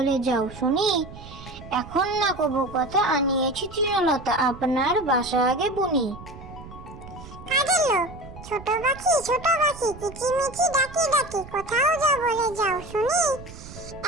যাও শুনি। এখন না কবু কথা, আনিয়েছি তৃণলতা, আপনার বাসা আগে বুনি। কাজের লোক। ছোট পাখি কিচিমিচি ডাকি ডাকি, কোথাও যাও বলে যাও শুনি।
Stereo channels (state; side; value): noise; right; rumble, 15 dB below the sound